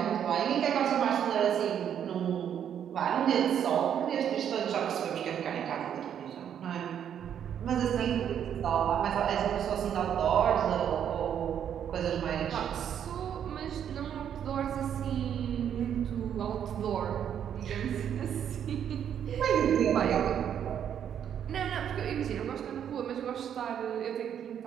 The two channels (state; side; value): quieter; left; 9.1 dB